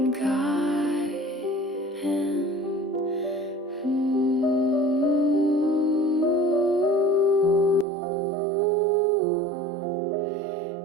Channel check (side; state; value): left; drops out; at 7.9 s